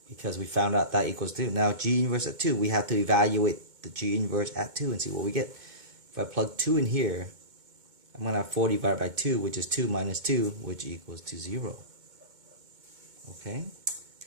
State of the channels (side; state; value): left; late; 2.2 ms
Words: Because we found out that equals 2. Now g inverse at 2, we have to evaluate the g inverse at 2 and see what we get. If I plug 2 in here, I'm going to have 4 divided by 2, which is 2 minus 2, which equals to 0. Okay,